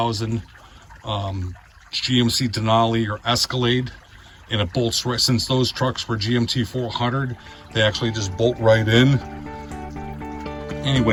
GMC Denali or Escalade, and it bolts right, since those trucks were GMT 400, they actually just bolt right in.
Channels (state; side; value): identical; both; correlation 1.00